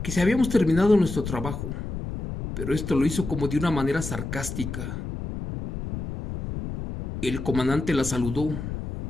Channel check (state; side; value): noise; left; rumble, 6 dB below the sound